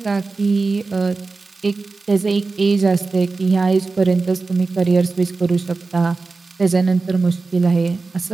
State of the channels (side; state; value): left; quieter; 3.9 dB